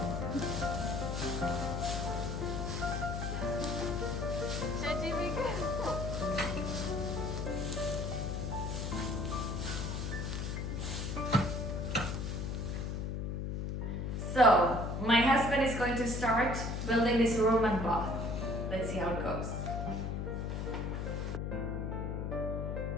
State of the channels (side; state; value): left; noise; hum, 2 dB below the sound